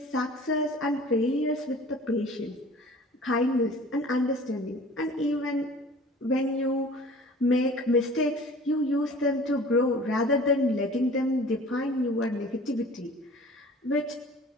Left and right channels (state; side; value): normal; both; correlation 0.45